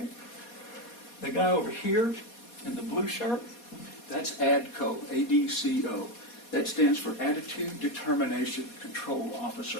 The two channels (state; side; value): late; right; 4.2 ms